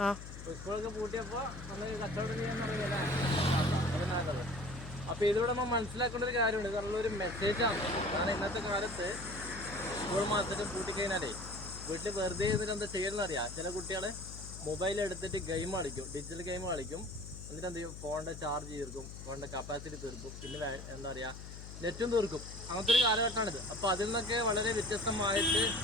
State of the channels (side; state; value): left; noise; hum, 11 dB below the sound